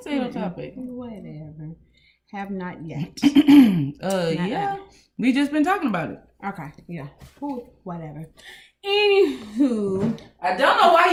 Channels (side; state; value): both; identical; correlation 1.00